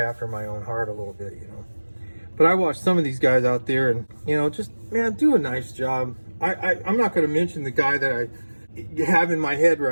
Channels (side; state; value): both; inverted; correlation -1.00